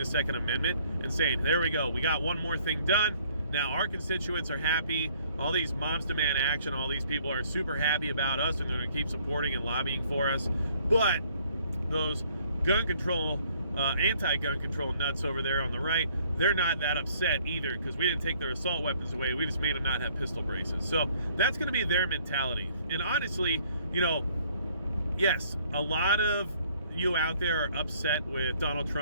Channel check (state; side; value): inverted; both; correlation -0.61